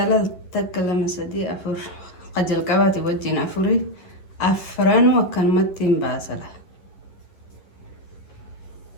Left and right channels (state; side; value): late; right; 11 ms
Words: takka lama sadii afur qajal qabaate wajjin afuri afranu akkanumatti hin baasala.